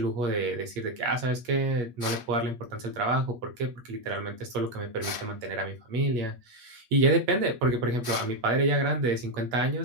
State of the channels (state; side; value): late; left; 8.4 ms